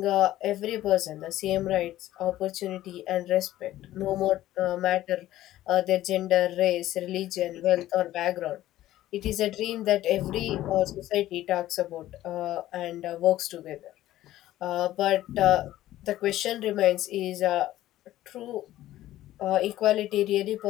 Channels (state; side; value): quieter; right; 14.5 dB